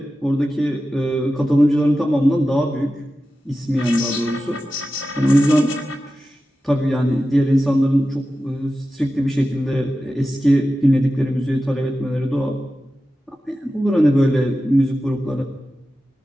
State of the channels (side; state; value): both; normal; correlation 0.93